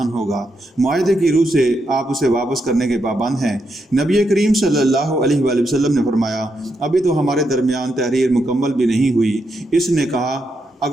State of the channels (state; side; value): normal; both; correlation 0.82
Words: ہوگا۔ معاہدے کی روح سے آپ اسے واپس کرنے کے پابند ہیں۔ نبی کریم صلی اللہ علیہ وآلہ وسلم نے فرمایا، ابھی تو ہمارے درمیان تحریر مکمل بھی نہیں ہوئی۔ اس نے کہا،